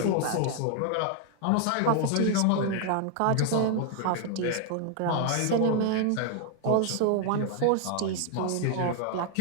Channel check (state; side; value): different; both; correlation 0.00